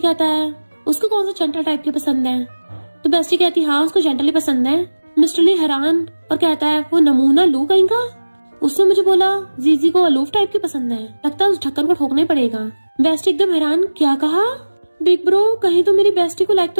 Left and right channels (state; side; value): inverted; both; correlation -1.00